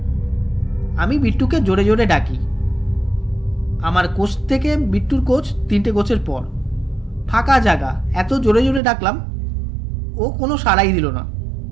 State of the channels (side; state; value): left; drops out; at 8.8 s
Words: আমি বিট্টুকে জোরে জোরে ডাকি। আমার কোচ থেকে বিট্টুর কোচ 3টে কোচের পর, ফাঁকা জায়গা, এত জোরে জোরে ডাকলাম, ও কোনো সাড়াই দিল না।